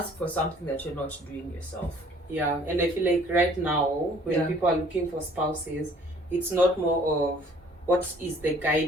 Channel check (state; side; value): normal; both; correlation 0.56